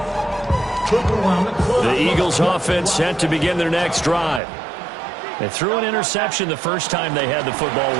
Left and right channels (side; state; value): left; drops out; at 4.4 s